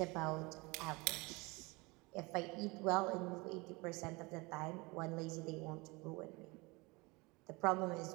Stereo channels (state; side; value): quieter; left; 25.4 dB